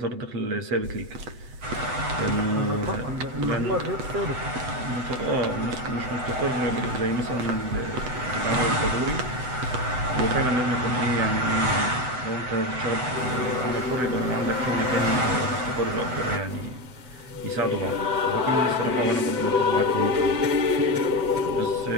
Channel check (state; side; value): late; left; 7.9 ms